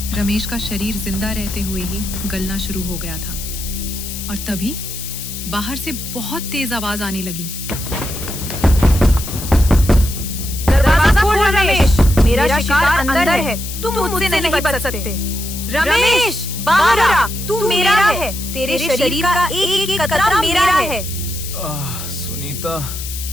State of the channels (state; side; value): noise; left; hiss, 9 dB below the sound